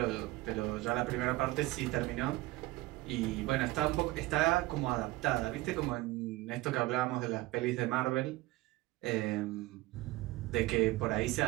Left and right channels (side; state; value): left; quieter; 19.1 dB